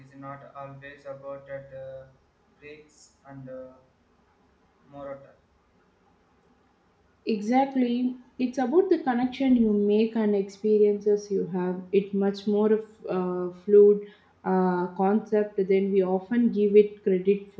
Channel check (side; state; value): both; identical; correlation 1.00